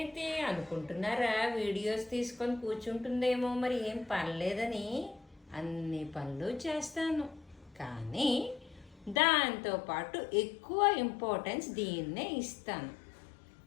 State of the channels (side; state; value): right; drops out; at 9.2 s